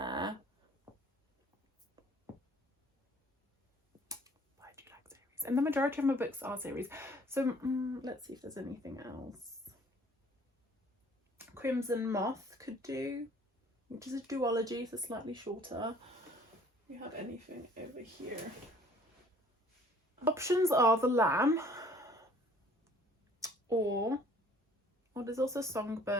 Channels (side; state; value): both; normal; correlation 0.55